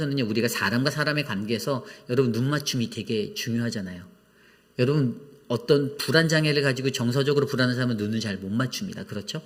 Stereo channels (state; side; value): identical; both; correlation 1.00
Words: 우리가 사람과 사람의 관계에서 여러분 눈맞춤이 되게 중요하잖아요. 여러분 어떤 불안 장애를 가지고 정서적으로 불안한 사람은 눈을 잘 못 맞춥니다. 그렇죠?